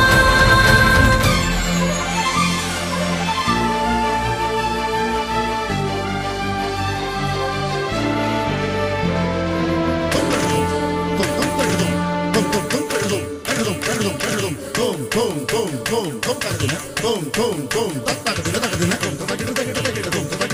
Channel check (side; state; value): both; identical; correlation 1.00